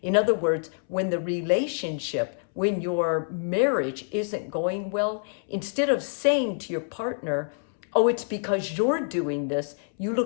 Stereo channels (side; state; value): right; silent; 61 dB below the other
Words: In other words, when the relationship, when your marriage isn't going well, instead of saying to your partner, oh, it's because you're doing this, you